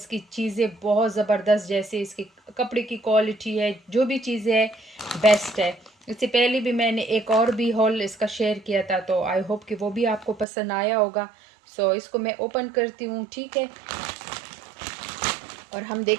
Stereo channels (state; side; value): drops out; left; at 10.5 s